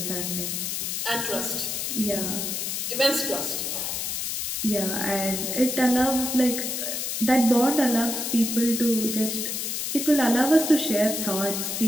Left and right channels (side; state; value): left; noise; hiss, 2 dB below the sound